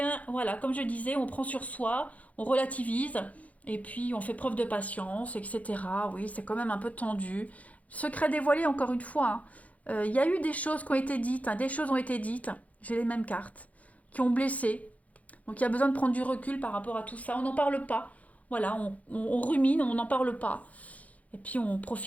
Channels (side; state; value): right; late; 0.069 ms